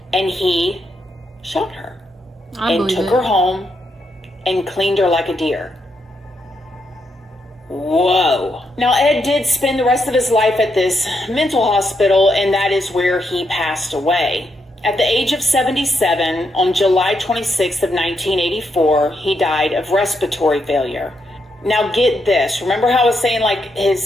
and he shot her and took her home and cleaned her like a deer. Whoa. Now, Ed did spend the rest of his life at this mental hospital, and that is where he passed away. At the age of 77, on July 26th of 1984, he died of respiratory failure. Now, get this. Remember how I was saying, like,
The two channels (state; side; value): normal; both; correlation 0.80